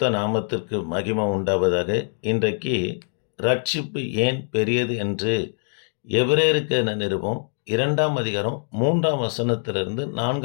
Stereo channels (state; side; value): silent; right; 63 dB below the other